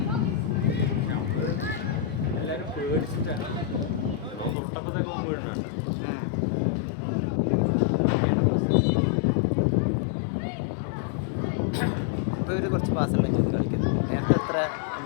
നമ്മൾ എല്ലാവരും പേടിച്ചിട്ടാണ് തൊട്ടപ്പത്തേക്കൊന്നും വീടുന്നുണ്ട്. ഇപ്പോൾ ഇവർ കുറച്ച് പാസ്സുകൾ കളിക്കുന്നു. നേരത്തെ അത്ര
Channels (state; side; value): drops out; right; at 4.5 s